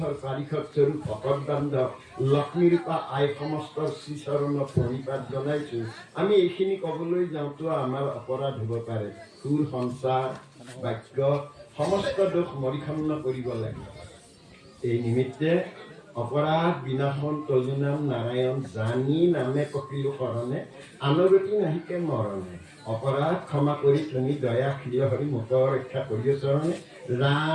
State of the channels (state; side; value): identical; both; correlation 1.00